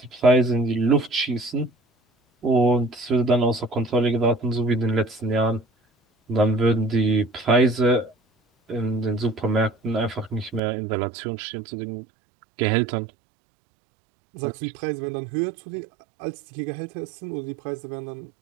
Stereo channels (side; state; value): left; drops out; at 10.6 s